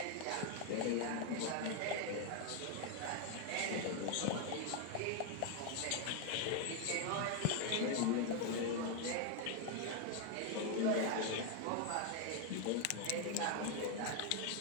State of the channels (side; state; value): both; different; correlation 0.01